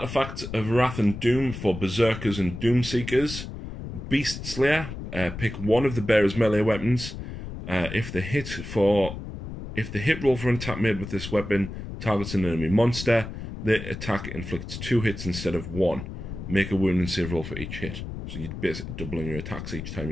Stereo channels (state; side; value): noise; left; rumble, 9 dB below the sound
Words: of Wrath and Doom for Berserkers and Doom Seekers. Beast Slayer. Pick one of the bearer's melee weapons. If the hit roll for an attack made with this weapon targets an enemy monster, the attack inflicts 2 hits instead of 1. Make a wound and save roll for each hit. So you're basically doubling your attacks each time